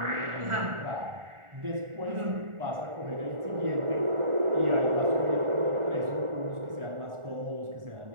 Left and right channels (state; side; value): late; left; 1.4 ms